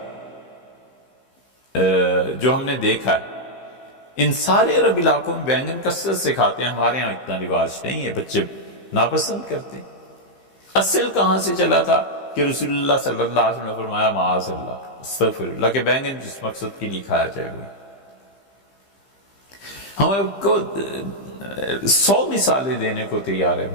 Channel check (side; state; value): right; late; 15 ms